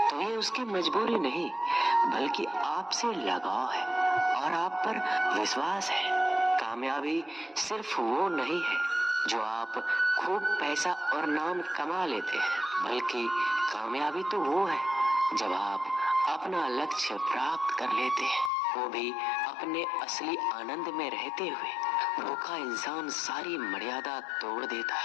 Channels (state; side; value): drops out; right; at 18.5 s